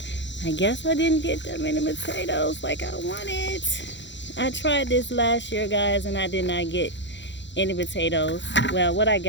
I guess I didn't get that many potatoes like I wanted. I tried this last year, guys, and I did not get any potatoes. Well, what I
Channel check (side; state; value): right; late; 0.52 ms